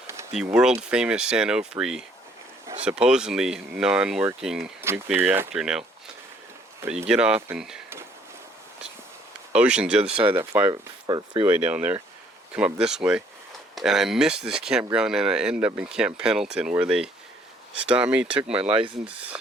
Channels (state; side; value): normal; both; correlation 0.63